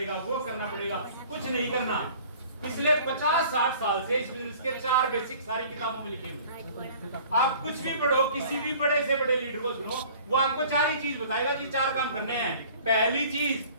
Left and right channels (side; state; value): both; inverted; correlation -0.49